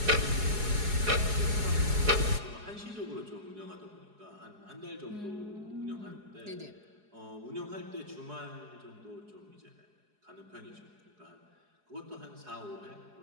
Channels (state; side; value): late; left; 4.8 ms